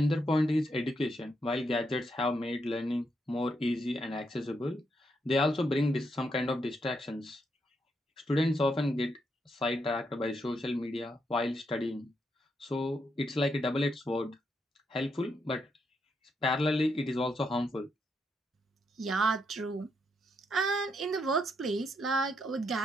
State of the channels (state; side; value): normal; both; correlation 0.79